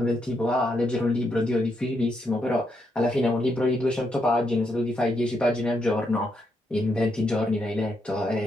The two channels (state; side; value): normal; both; correlation 0.79